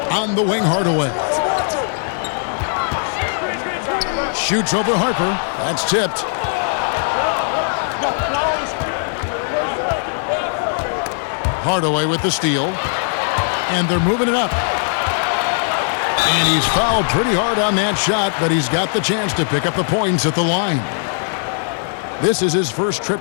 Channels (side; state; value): right; silent; digital silence